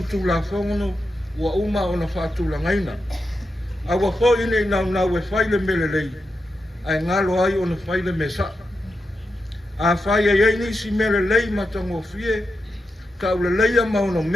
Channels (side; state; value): both; normal; correlation 0.87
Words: tu la whongono. Ua uma o na whātula ngaina. A ua fo ine i nau e whaile mele lei. Ai ngalo ai o na whaile me sa. A whai e ei nisi mele lei matango fie. Tau le leia maono